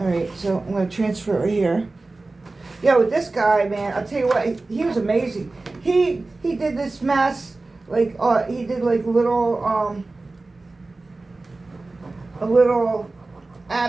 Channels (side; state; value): left; quieter; 3.3 dB